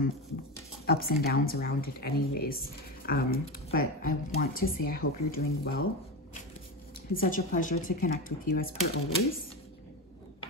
ups and downs around it anyways. But I want to say I hope you're doing well. It's such a pleasure to connect with you as per always.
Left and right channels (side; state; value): both; normal; correlation 0.19